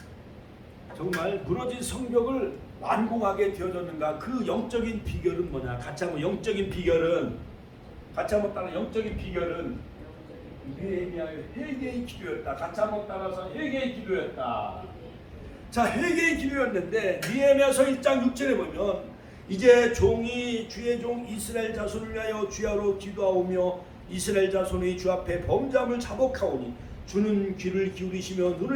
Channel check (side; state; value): both; identical; correlation 1.00